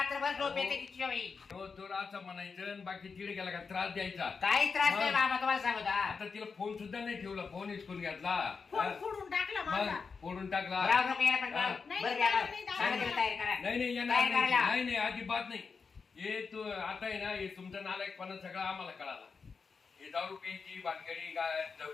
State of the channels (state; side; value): quieter; right; 5.2 dB